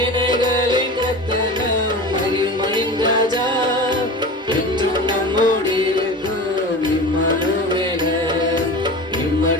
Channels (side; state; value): both; normal; correlation 0.32